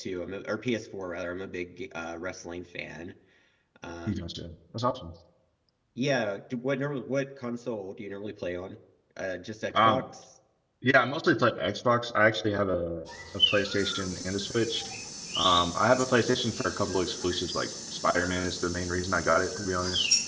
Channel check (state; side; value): identical; both; correlation 1.00